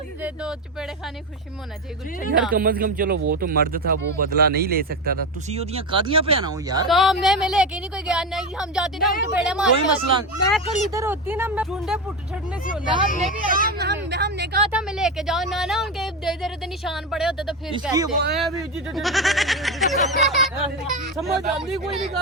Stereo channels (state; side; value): normal; both; correlation 0.17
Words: दो चपेड़े खाने खुशी में होना चाहिए। यार कम से कम चलो वो तो मर्द था, वो बदला नहीं ले सकता था। तुसी ओदियां कादियां पे आना हो यार। तो मैं लेके नहीं कोई गया नहीं, हम जाते ना हम चपेड़े मार। कोई मसला नहीं। मैं कल इधर होती ना, मैं चुंडे पुट छड़ने से होना। हमने कहा था मैं लेके जाओ ना ना, उनके दे निशान पड़े होते तो फिर इसकी कहते। समझ आती कोई नहीं